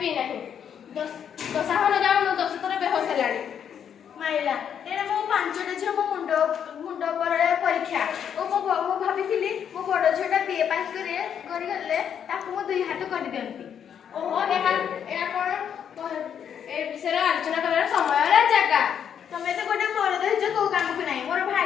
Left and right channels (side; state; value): right; quieter; 8.4 dB